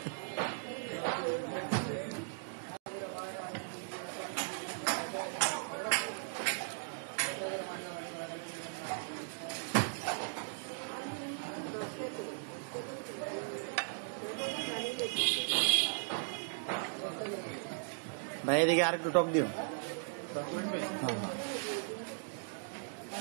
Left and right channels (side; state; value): left; silent; digital silence